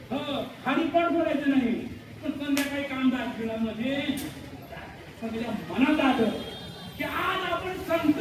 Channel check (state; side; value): identical; both; correlation 1.00